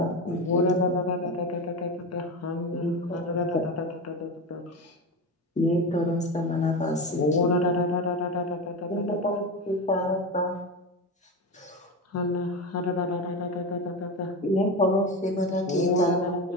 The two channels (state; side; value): normal; both; correlation 0.21